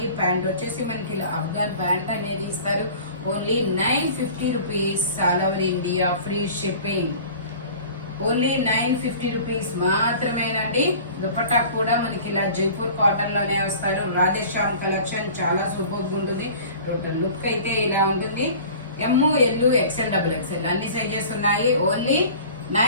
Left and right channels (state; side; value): inverted; both; correlation -0.43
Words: ప్యాంట్ వచ్చేసి మనకి ఇలా అఫ్ఘన్ ప్యాంట్ అనేది ఇస్తారు. Only 950 rupees, all over India free shipping. Only 950 rupees మాత్రమేనండి. దుపట్టా కూడా మనకి ఇలా జైపూర్ కాటన్ లోనే వస్తారు. రాధేశ్యామ్ కలెక్షన్ చాలా సూపర్ ఉంటుంది. టోటల్ లుక్ అయితే ఇలా ఉంటుంది. ఎమ్, ఎల్, XL, XXL అన్ని సైజెస్ ఉన్నాయి. Only